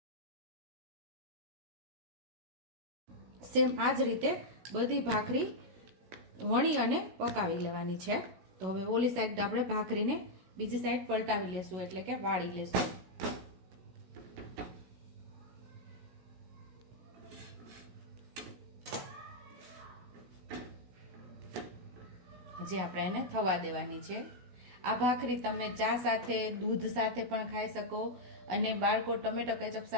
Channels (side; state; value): left; late; 16 ms